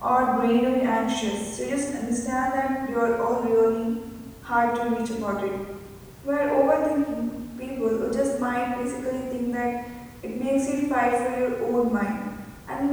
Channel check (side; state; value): both; identical; correlation 1.00